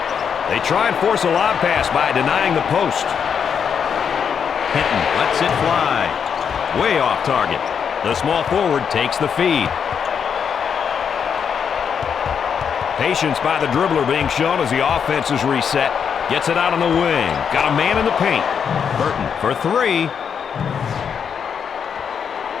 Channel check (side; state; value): right; quieter; 7.2 dB